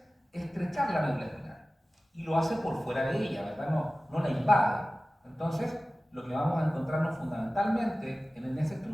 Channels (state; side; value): normal; both; correlation 0.96